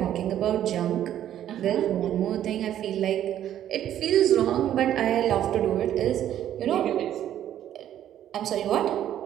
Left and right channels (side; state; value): left; quieter; 11.3 dB